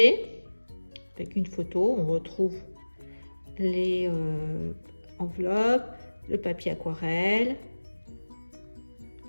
avec une photo. On retrouve les enveloppes, le papier aquarelle,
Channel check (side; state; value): both; inverted; correlation -1.00